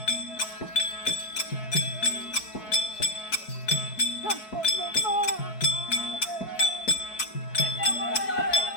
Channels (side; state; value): right; late; 4.6 ms